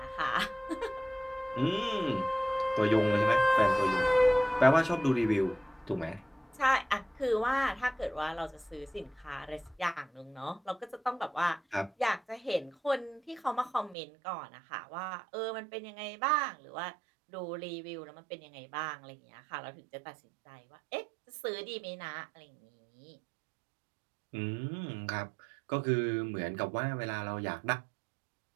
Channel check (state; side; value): drops out; left; at 14.0 s